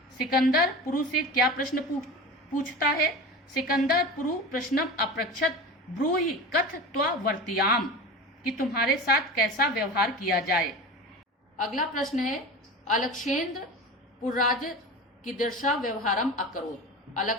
सिकंदर पुरु से क्या प्रश्न पूछता है। सिकंदर पुरु प्रश्नम अपृच्छत ब्रूहि कथ त्वा वर्तियाम, कि तुम्हारे साथ कैसा व्यवहार किया जाए। अगला प्रश्न है अलक्षेंद्र पुर्राज कीदृशा व्यवहारम अकरोत्,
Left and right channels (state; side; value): normal; both; correlation 0.30